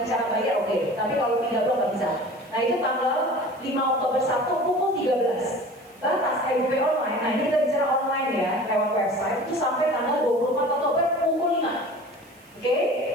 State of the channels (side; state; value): right; noise; hiss, 29 dB below the sound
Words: cara bayar, oke. Tapi kalau pindah blok nggak bisa. Nah, itu tanggal 5 Oktober 1 pukul 13. Batas EDP online, nah ini kita bicara online ya, lewat website, itu sampai tanggal 24 Oktober pukul 5. Oke,